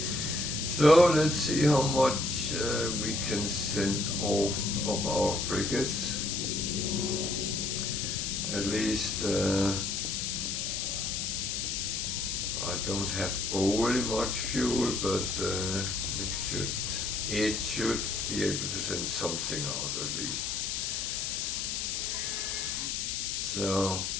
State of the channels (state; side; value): noise; left; hiss, 1 dB below the sound